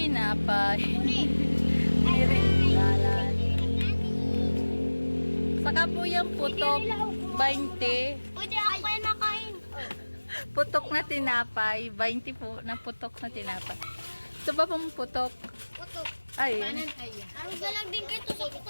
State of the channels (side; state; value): both; inverted; correlation -1.00